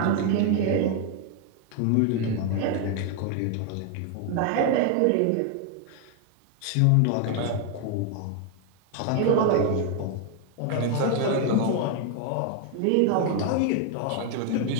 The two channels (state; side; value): different; both; correlation 0.01